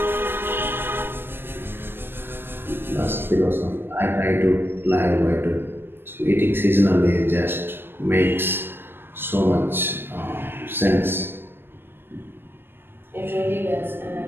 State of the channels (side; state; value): left; late; 0.10 ms